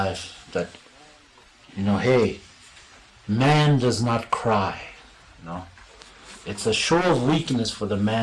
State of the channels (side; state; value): both; identical; correlation 1.00